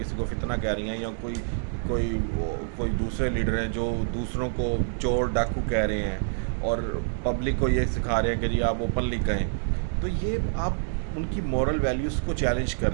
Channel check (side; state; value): left; silent; digital silence